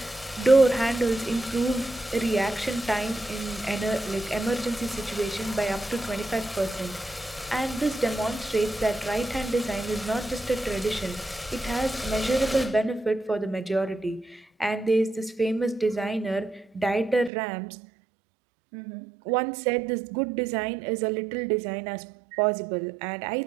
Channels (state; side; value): drops out; left; at 17.3 s